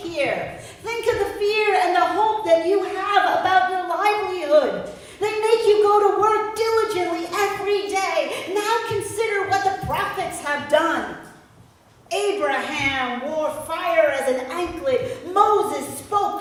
Think of the fear and the hope that you have about your livelihood. They make you go to work diligently every day. Now consider what the prophets have done. Abraham wore fire as an anklet. Moses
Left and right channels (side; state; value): both; identical; correlation 1.00